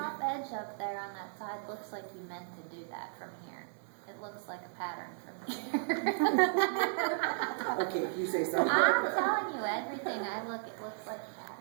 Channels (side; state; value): left; silent; digital silence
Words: edge up there on that side looks like you meant to do that from here. It looks like a pattern from here. Okay, if you say so. I'm telling you, everything I look, it looks like a pattern.